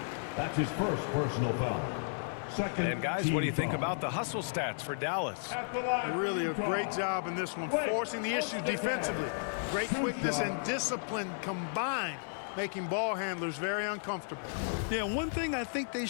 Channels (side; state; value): right; silent; digital silence